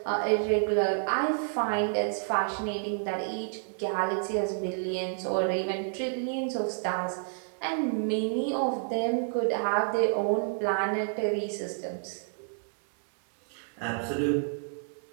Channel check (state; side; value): silent; left; 58 dB below the other